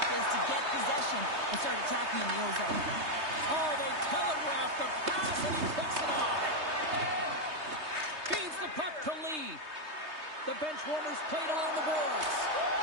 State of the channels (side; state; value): left; late; 3.2 ms